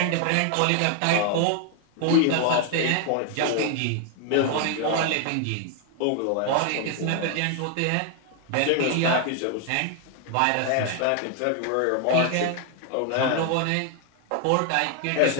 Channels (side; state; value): both; different; correlation 0.00